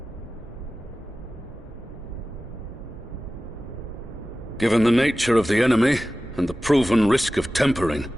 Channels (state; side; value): normal; both; correlation 0.95